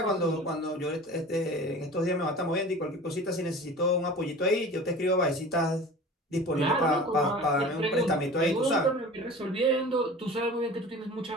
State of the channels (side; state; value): both; normal; correlation 0.38